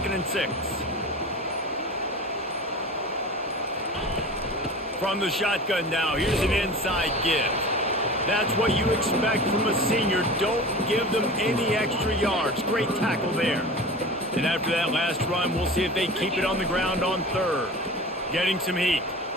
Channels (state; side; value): normal; both; correlation 0.35